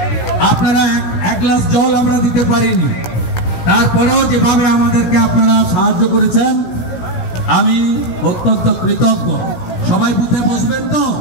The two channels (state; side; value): late; right; 17 ms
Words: আপনারা এক গ্লাস জল আমরা দিতে পারিনি, তারপরেও যেভাবে আমাদেরকে আপনারা সাহায্য করেছেন আমি অত্যন্ত কৃতজ্ঞ। সবাই বুথে বসবেন তো?